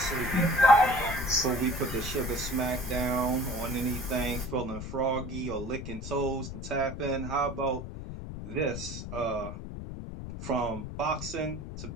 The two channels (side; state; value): left; noise; rumble, 8 dB below the sound